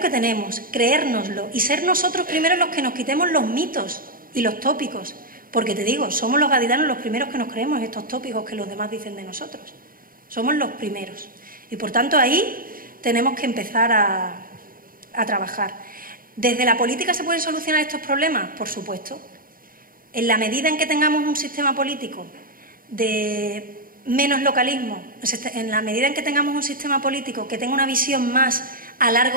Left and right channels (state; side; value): late; left; 0.41 ms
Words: tenemos, creérnoslo y ser nosotros primero los que nos quitemos los mitos y los tópicos. Porque te digo, somos los gaditanos los primeros que nos creemos estos tópicos que los demás dicen de nosotros. Somos los primeros. Y por tanto, ahí tenemos que empezar a trabajar. ¿Desde la política se pueden solucionar estos problemas? Por supuesto. En la medida en que tengamos un sistema político de menos localismo, en la medida en que tengamos un sistema político que tenga una visión más a